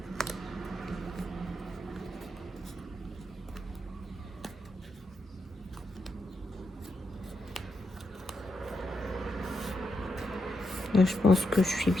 Là, je pense que je suis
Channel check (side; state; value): both; normal; correlation 0.83